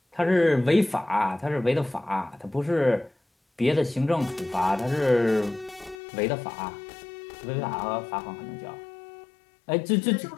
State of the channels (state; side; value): drops out; right; at 6.0 s